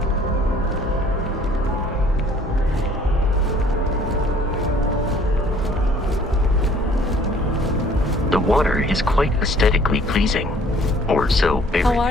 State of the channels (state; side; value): normal; both; correlation 0.56